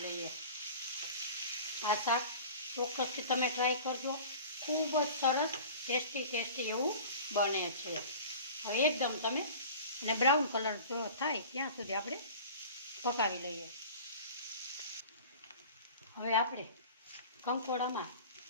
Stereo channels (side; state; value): both; inverted; correlation -0.40